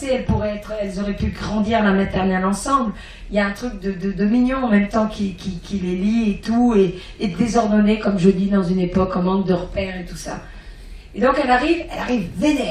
elles auraient pu grandir la maternelle ensemble. Il y a un truc de mignon en même temps qui les lie et tout, et désordonné, comme je dis, dans une époque en manque de repères et tout ça. Et donc elle arrive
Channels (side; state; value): both; identical; correlation 1.00